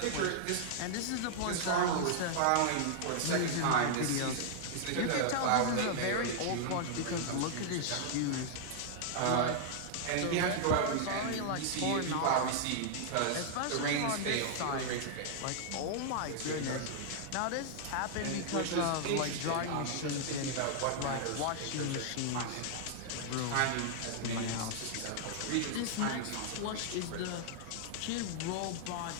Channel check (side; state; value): both; different; correlation -0.01